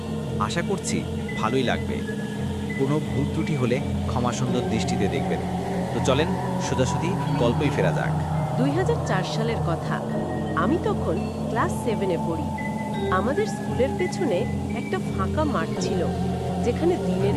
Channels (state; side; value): identical; both; correlation 1.00